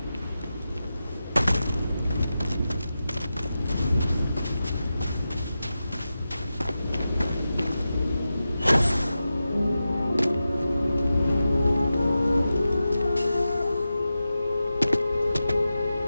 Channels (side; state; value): both; inverted; correlation -0.92